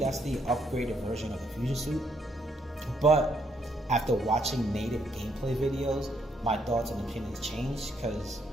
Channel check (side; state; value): both; normal; correlation 0.72